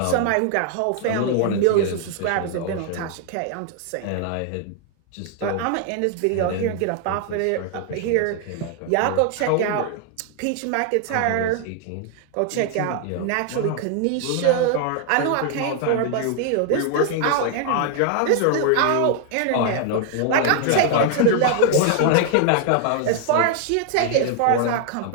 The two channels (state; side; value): different; both; correlation 0.00